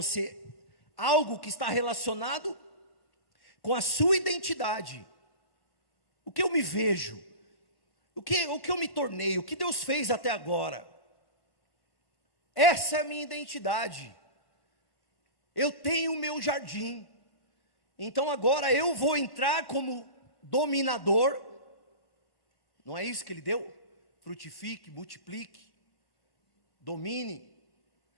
algo que está relacionado com a sua identidade. O que eu me vejo, o que eu me tornei, o que Deus fez até agora. Essa é a minha identidade. Eu tenho o meu jardim. Então agora eu vou entrar como dominador. Não é isso que Ele deu? Frutifique, multiplique, domine.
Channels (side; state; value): right; late; 1.1 ms